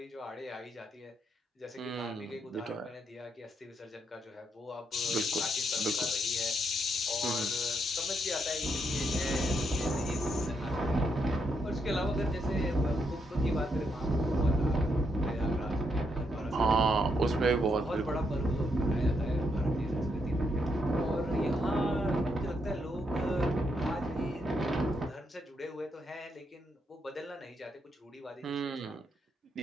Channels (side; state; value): both; normal; correlation 0.78